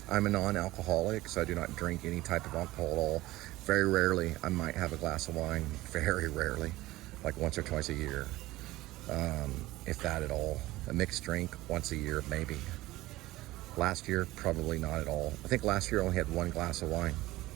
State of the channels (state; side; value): quieter; left; 17.8 dB